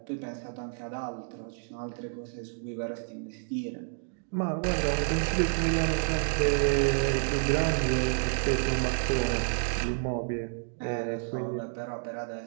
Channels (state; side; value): silent; left; digital silence